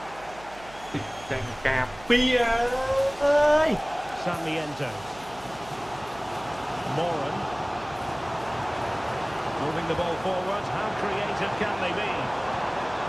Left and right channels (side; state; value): right; noise; hum, 20 dB below the sound